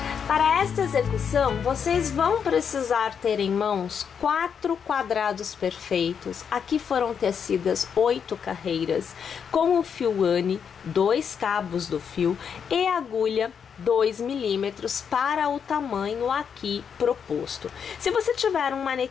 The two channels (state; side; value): quieter; right; 7.1 dB